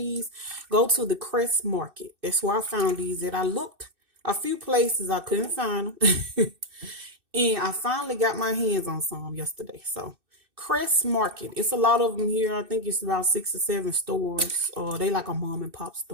go to the Crest Market. That's where I found these. That I looked a few places, I couldn't find them. And I finally got my hands on some yesterday. So Crest Market. It's a lot of them here. I think it's about 6 or 7 stores. They like a mom and pop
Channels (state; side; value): late; left; 2.6 ms